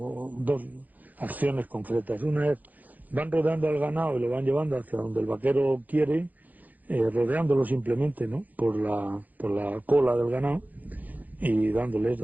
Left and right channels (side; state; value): left; late; 0.082 ms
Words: dos acciones concretas. Una es, van rodeando al ganado y lo van llevando hacia donde el vaquero quiere, rodeándolo simplemente, ¿no? Por la cola del ganado. Y dándoles.